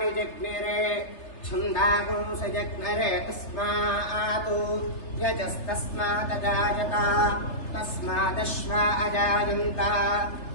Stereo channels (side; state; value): right; late; 3.3 ms